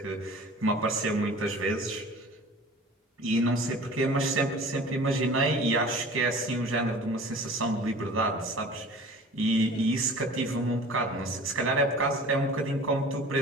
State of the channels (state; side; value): normal; both; correlation 0.42